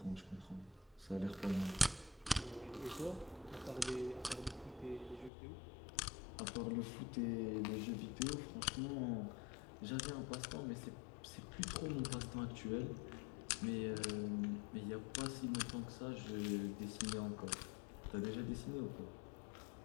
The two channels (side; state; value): right; drops out; at 5.3 s